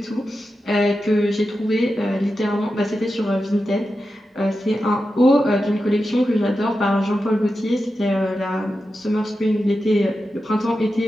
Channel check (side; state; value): both; normal; correlation 0.90